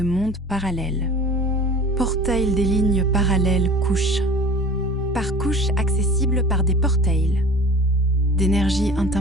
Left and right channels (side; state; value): both; normal; correlation 0.41